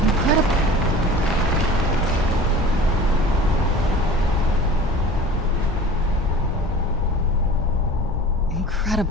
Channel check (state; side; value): normal; both; correlation 0.41